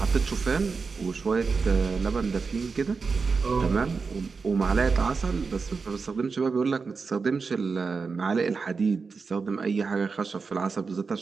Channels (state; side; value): quieter; left; 4.8 dB